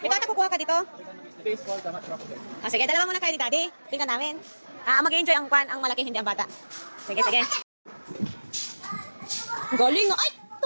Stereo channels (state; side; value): inverted; both; correlation -1.00